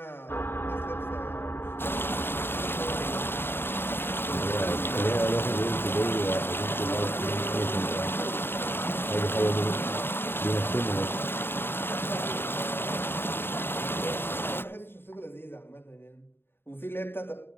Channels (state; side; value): late; right; 0.11 ms